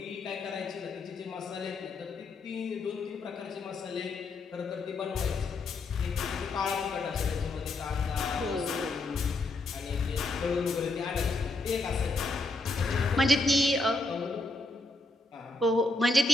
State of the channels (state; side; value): quieter; right; 3.1 dB